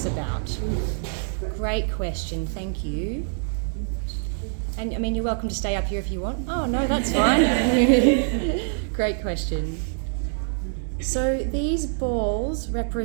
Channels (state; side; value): silent; left; 62 dB below the other